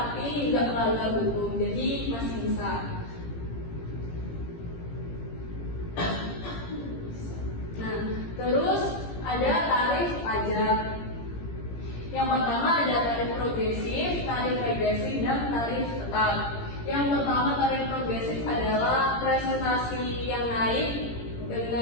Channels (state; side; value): late; right; 17 ms